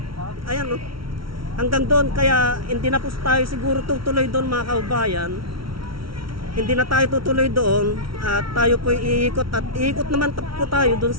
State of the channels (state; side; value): late; left; 0.74 ms